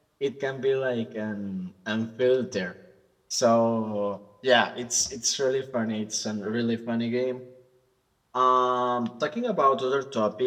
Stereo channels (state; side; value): identical; both; correlation 1.00